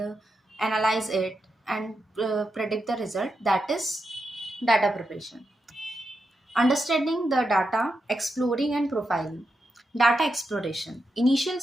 analyze it and predict the result, that is data preparation. Understanding the data, exploring and profiling. Data exploration. Initial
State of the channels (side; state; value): both; normal; correlation 0.86